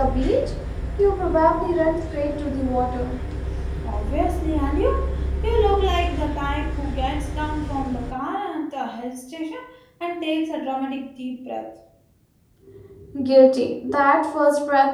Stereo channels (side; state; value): both; identical; correlation 1.00